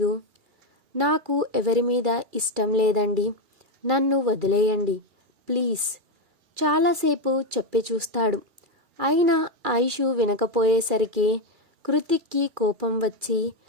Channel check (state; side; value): late; left; 2.3 ms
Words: నాకు ఎవరి మీద ఇష్టం లేదండి, నన్ను వదిలేయండి ప్లీజ్. చాలాసేపు చెప్పి చూస్తాడు. అయినా ఐషు వినకపోయేసరికి కృతిక్కి కోపం వచ్చి